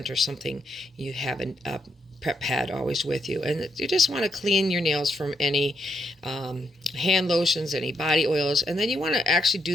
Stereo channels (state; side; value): normal; both; correlation 0.78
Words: or something, you have a prep pad always with you. And you just want to clean your nails from any hand lotions, any body oils, and then you want to actually